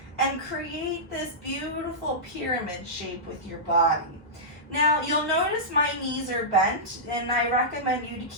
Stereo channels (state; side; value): normal; both; correlation -0.14